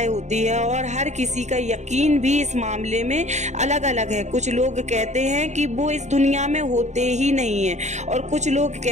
होती है और हर किसी का यकीन भी इस मामले में अलग अलग है। कुछ लोग कहते हैं कि वो इस दुनिया में होते ही नहीं है और कुछ लोग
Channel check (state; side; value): late; left; 0.34 ms